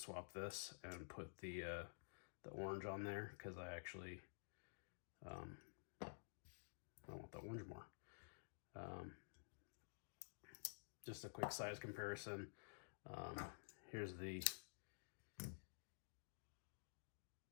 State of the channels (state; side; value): silent; right; digital silence